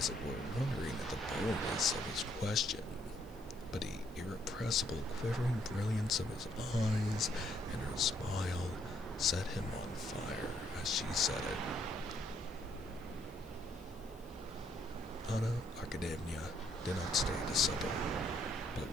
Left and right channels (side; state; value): left; noise; hiss, 26 dB below the sound